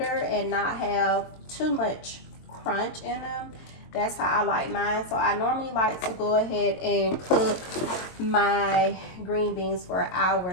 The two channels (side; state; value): right; late; 22 ms